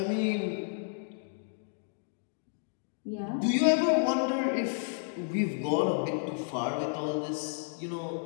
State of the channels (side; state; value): right; silent; digital silence